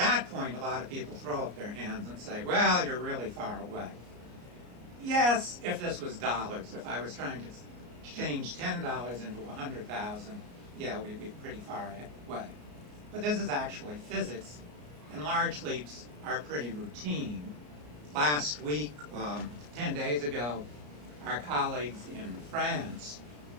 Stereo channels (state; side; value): late; left; 34 ms